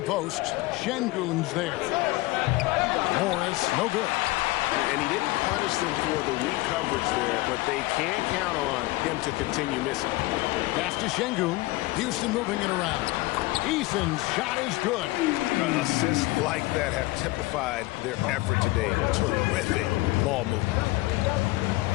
Şengün's there. Morris, no good. And he didn't punish them for the weak coverage there, but they can count on him to continue missing. Pass to Şengün. Houston moving it around. Eason's shot is good. Assists like that have typified their effort today. Terrific ball movement.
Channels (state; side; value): quieter; right; 20.3 dB